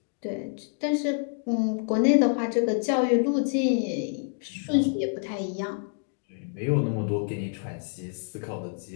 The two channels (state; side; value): silent; right; 60 dB below the other